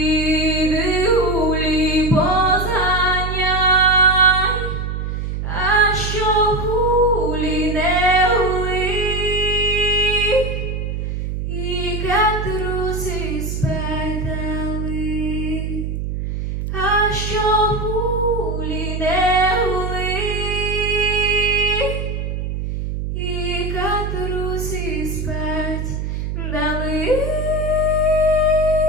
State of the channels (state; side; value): noise; right; hum, 3 dB below the sound